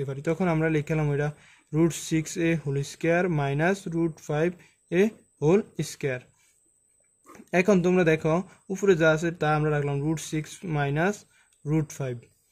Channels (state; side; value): identical; both; correlation 1.00